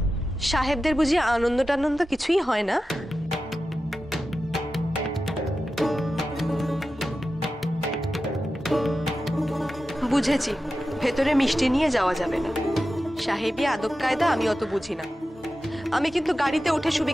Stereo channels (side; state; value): both; normal; correlation 0.93